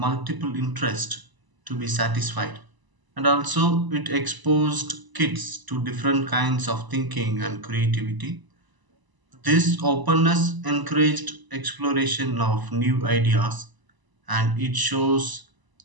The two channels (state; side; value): late; left; 1.0 ms